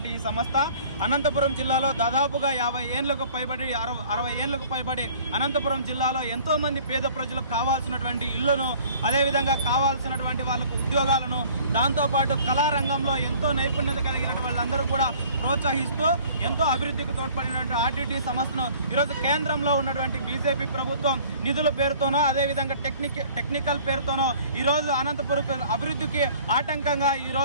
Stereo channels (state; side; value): inverted; both; correlation -0.51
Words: ఈ సంస్థ అనంతపురం జిల్లాలో దాదాపుగా 50 ఏళ్లకు పైబడి 60 ఏళ్లకు పైబడి అనంతపురం జిల్లాలో ఎంతో మంది పేద ప్రజలకు కావాల్సినటువంటి ఇళ్లను, అదేవిధంగా కావాల్సినటువంటి వాళ్ళకు ఉద్యోగాలను, దాంతోపాటు కళారంగంలో ఎంతో నైపుణ్యత కలిగిన వాళ్ళందరూ కూడా ప్రోత్సహిస్తూ ఎంతో అభివృద్ధికి తోడ్పడినటువంటి ఆర్డిటి సంస్థను ఈరోజు కేంద్రంలో ఉన్నటువంటి బీజేపీ ప్రభుత్వం నిధుల పేరుతోనో, అదేవిధంగా టెక్నికల్ పేరుతోనో ఈరోజు అనంతపురం అభివృద్ధికి ఆటంకంగా